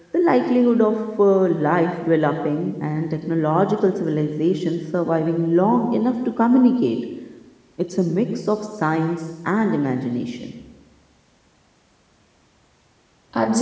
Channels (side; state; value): both; identical; correlation 1.00